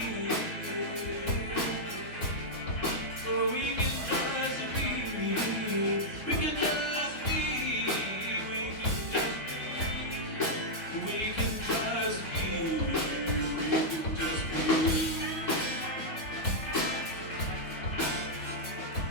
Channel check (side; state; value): right; late; 3.6 ms